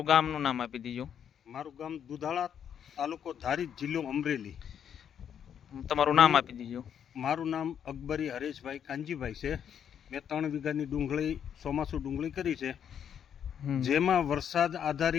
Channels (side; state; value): right; quieter; 8.6 dB